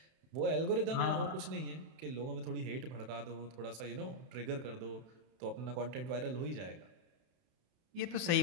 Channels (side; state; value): left; late; 31 ms